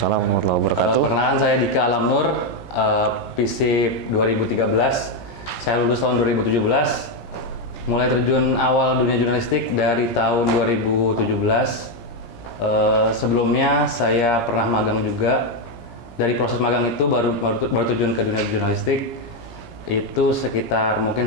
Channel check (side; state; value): right; late; 17 ms